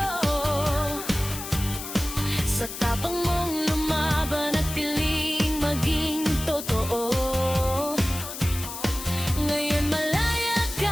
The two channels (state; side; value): noise; left; hiss, 9 dB below the sound